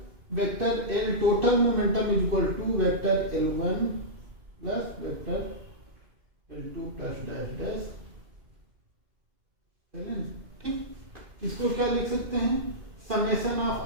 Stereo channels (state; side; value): late; left; 2.5 ms